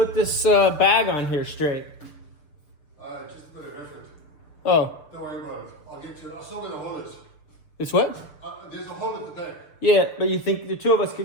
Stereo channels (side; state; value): right; late; 6.7 ms